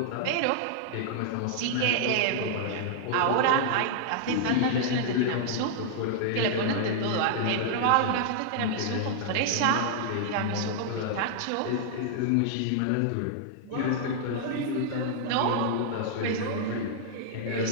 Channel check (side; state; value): both; different; correlation -0.01